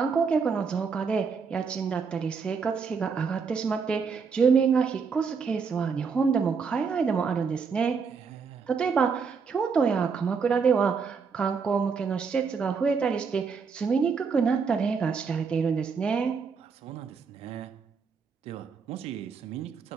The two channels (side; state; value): left; quieter; 5.6 dB